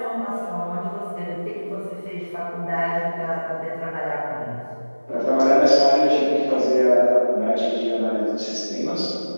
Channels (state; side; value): inverted; both; correlation -1.00